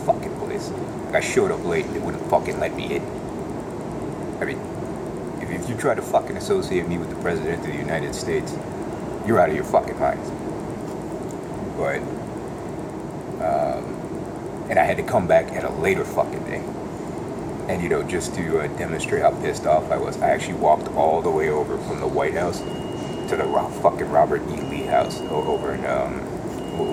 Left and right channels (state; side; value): identical; both; correlation 1.00